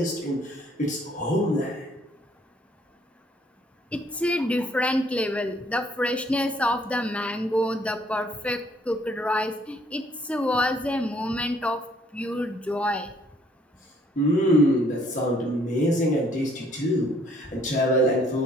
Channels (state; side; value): normal; both; correlation 0.63